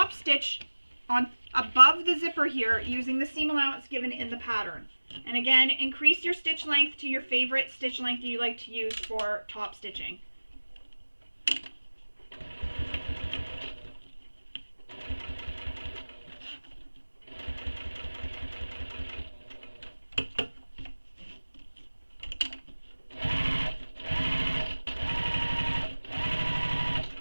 stitch on above the zipper here using the seam allowance given in the pattern. And again, increase your stitch length to your favorite stitch length you like to use for top stitching.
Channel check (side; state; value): both; inverted; correlation -1.00